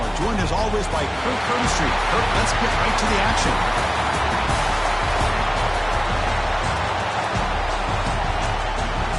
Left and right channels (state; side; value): identical; both; correlation 1.00